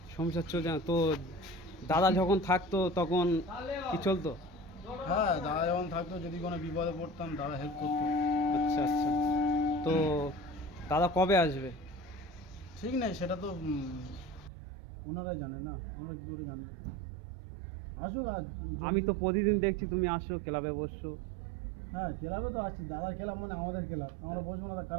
সংসার চলছে না তো? দাদা যখন থাকতো তখন কি চলতো? হ্যাঁ, দাদা যখন থাকতো যদি কোনো বিপদে পড়তাম দাদা হেল্প করতো। আচ্ছা আচ্ছা। তো দাদা কবে আসবে? ঠিক নেই, সেটা তো ওনারাই জানে না, আমরা কী করে জানবো। আসুক আজ। আমি তো প্রতিদিন দেখছি তুমি আসছো, ক্লাবে বসছো। হ্যাঁ, ক্লাবে তো আসছি, দাদার ক্লাব মানে আমাদের ক্লাব, আমরা বসবো না তা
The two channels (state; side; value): drops out; left; at 14.5 s